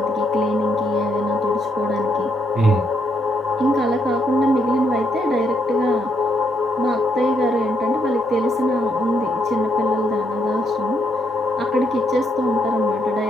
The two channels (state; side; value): normal; both; correlation 0.75